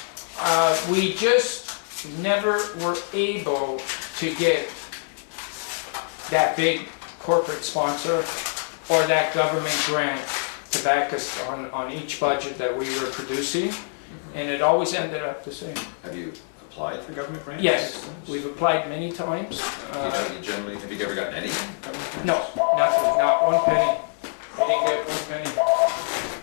we just never were able to get that big corporate sponsor or that government grant to back us on each budget that we were producing, and it always ended up the same. Have you applied for government grants? Yes, we've applied many times. You generally, have you ever gotten any government grants? No, nothing, not one penny. We didn't get one penny.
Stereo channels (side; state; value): right; silent; 62 dB below the other